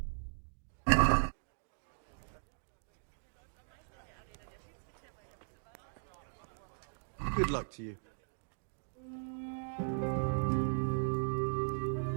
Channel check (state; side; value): silent; left; digital silence